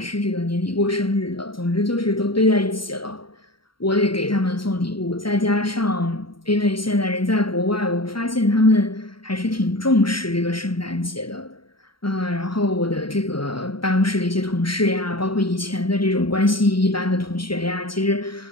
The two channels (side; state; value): right; late; 0.73 ms